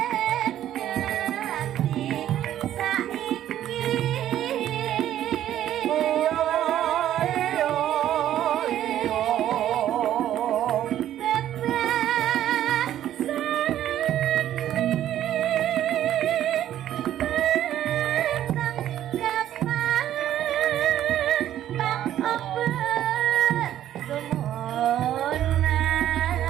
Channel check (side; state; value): left; quieter; 11.8 dB